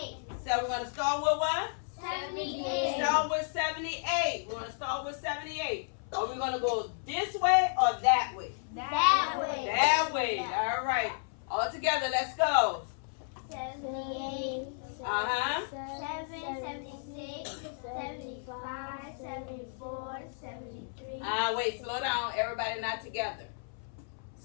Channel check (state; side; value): silent; right; 56 dB below the other